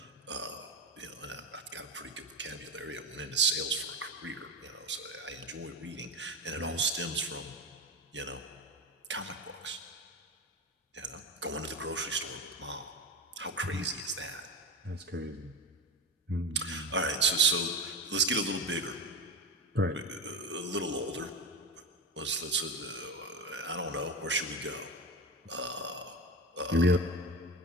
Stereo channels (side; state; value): both; normal; correlation 0.22